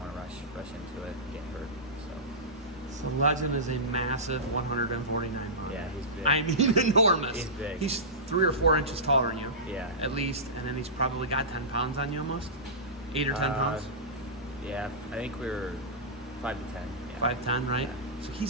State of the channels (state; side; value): normal; both; correlation -0.17